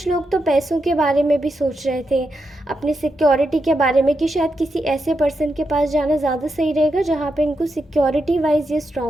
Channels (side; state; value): both; normal; correlation 0.85